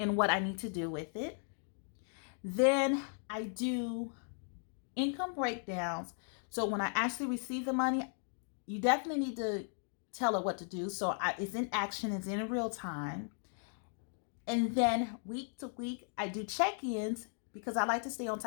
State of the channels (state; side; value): silent; right; 53 dB below the other